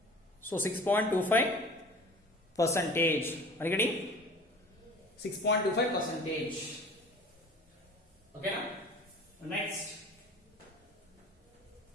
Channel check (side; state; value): both; normal; correlation 0.43